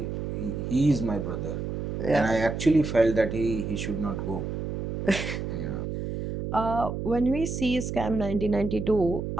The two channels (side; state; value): right; noise; hum, 4 dB below the sound